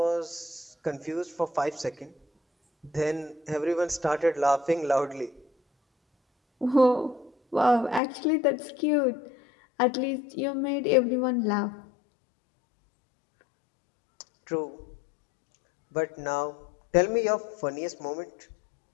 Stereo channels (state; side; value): drops out; right; at 8.0 s